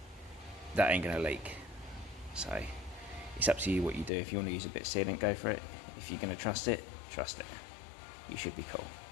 that ain't gonna leak. So it's up to you what you do. If you want to use a bit of sealant, go for it. If you're gonna trust it, trust it. You should be cool.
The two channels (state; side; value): drops out; right; at 4.1 s